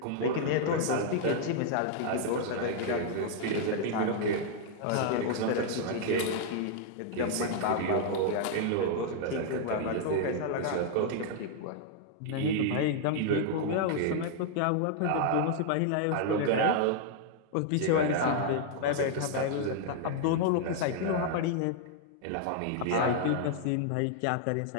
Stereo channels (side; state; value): both; different; correlation -0.01